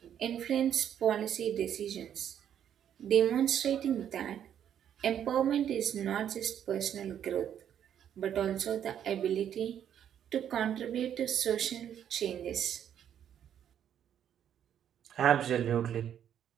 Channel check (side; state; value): left; quieter; 9.6 dB